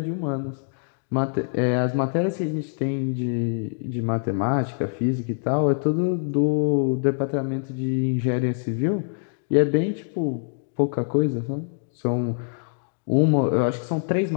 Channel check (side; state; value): right; silent; digital silence